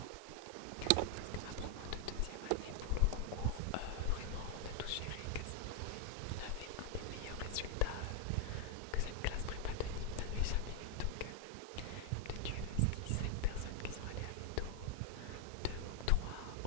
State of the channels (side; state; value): both; different; correlation 0.00